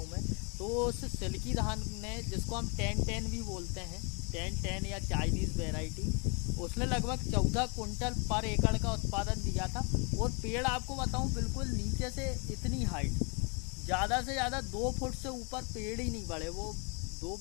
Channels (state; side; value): quieter; right; 34.5 dB